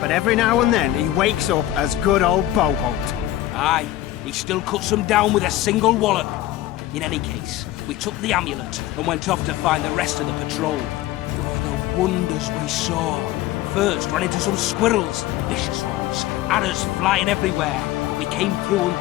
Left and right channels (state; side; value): quieter; right; 14.6 dB